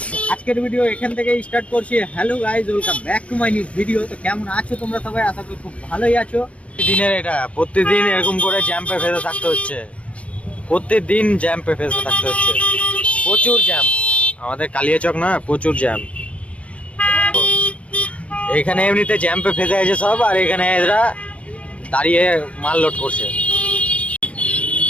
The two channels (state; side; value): late; right; 0.063 ms